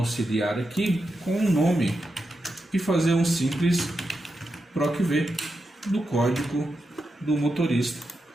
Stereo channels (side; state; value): both; normal; correlation 0.87